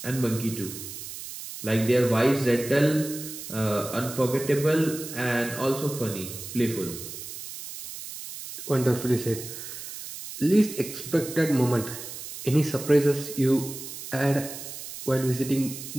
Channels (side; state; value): right; noise; hiss, 10 dB below the sound